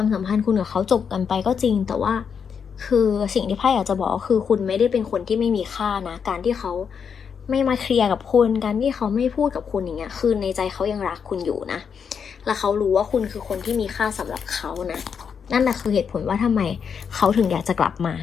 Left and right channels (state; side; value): quieter; right; 6.8 dB